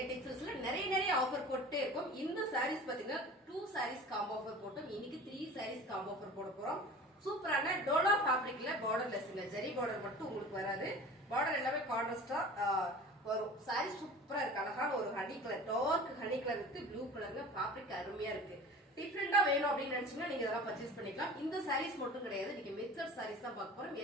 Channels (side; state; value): both; normal; correlation 0.39